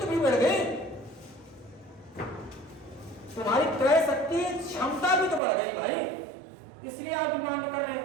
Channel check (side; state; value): left; drops out; at 5.4 s